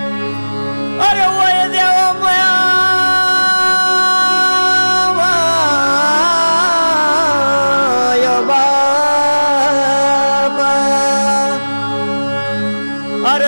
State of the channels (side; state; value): both; inverted; correlation -1.00